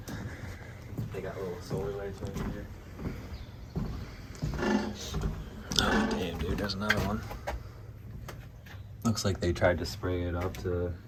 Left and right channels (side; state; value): both; identical; correlation 1.00